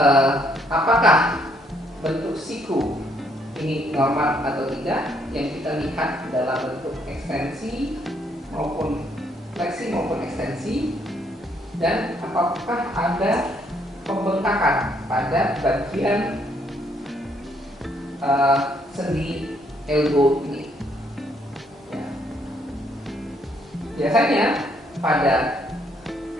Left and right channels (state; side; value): normal; both; correlation 0.70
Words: apakah bentuk siku ini normal atau tidak. Yang kita lihat adalah bentuk ekstensi maupun fleksi maupun ekstensi, dan apakah ada pembengkakan pada bagian sendi elbow ini. Ya. Biasanya pada